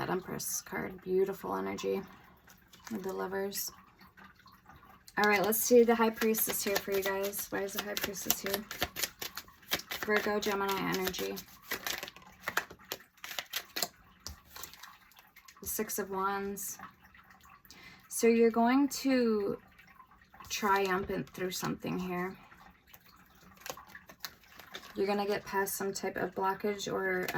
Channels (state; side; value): identical; both; correlation 1.00